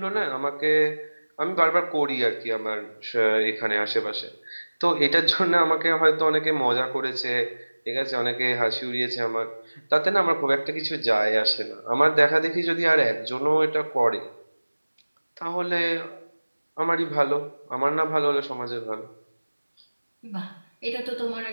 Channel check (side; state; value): both; inverted; correlation -1.00